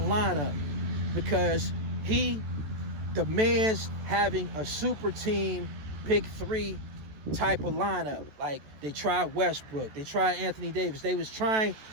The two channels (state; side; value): late; left; 14 ms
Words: lineup, because he demands having a super team, big three type of lineup. Like, they tried Westbrook, they tried Anthony Davis. They was trying,